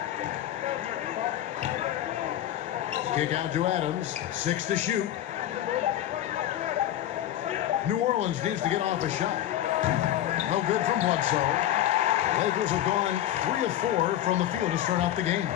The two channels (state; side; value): quieter; right; 12.5 dB